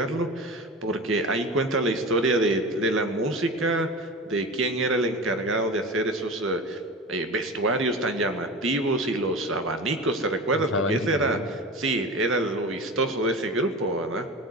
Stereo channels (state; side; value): normal; both; correlation 0.30